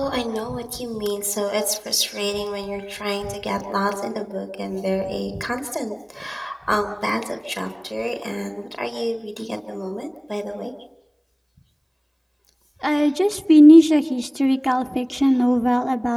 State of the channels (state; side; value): identical; both; correlation 1.00